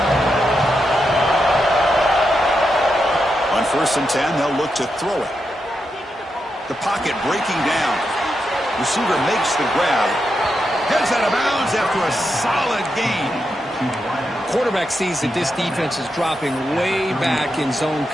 On 1st and 10, they'll look to throw it. The pocket breaking down. Receiver makes the grab. Heads out of bounds after a solid gain. Quarterback sees that this defense is dropping way back in zone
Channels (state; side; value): normal; both; correlation 0.85